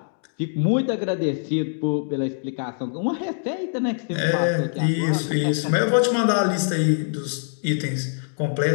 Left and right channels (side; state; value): right; silent; digital silence